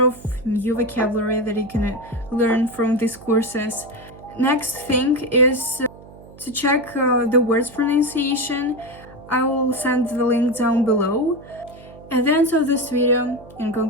new vocabulary that you can learn from these courses. Next thing is to check the words pronunciation. I will send the link down below. At the end of this video, in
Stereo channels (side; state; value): right; noise; hum, 20 dB below the sound